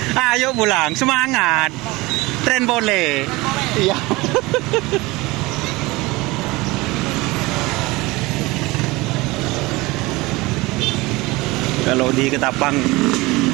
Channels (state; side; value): quieter; left; 21.9 dB